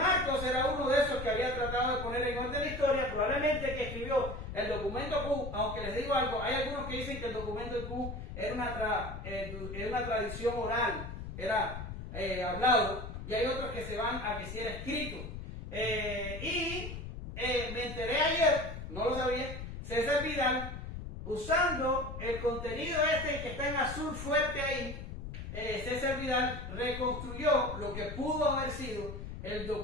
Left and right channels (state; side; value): noise; left; rumble, 8 dB below the sound